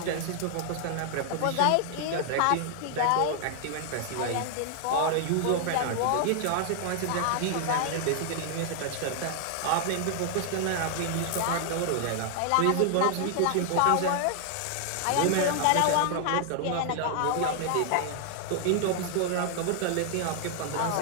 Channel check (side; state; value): both; different; correlation 0.00